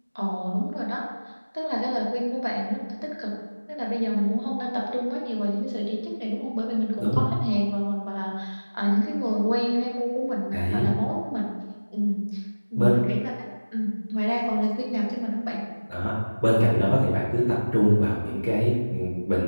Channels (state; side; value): inverted; both; correlation -1.00